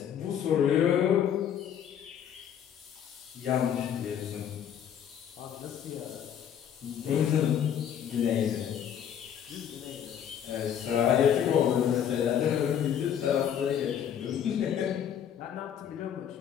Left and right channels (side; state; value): right; quieter; 9.1 dB